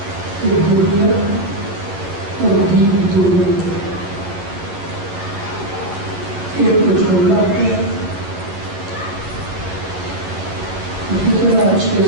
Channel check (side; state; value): left; late; 10 ms